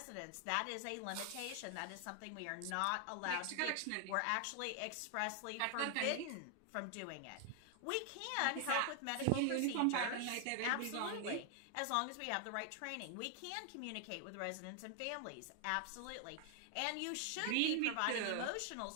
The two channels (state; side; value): different; both; correlation 0.00